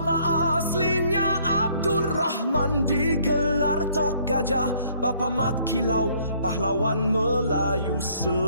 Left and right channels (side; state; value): both; inverted; correlation -0.63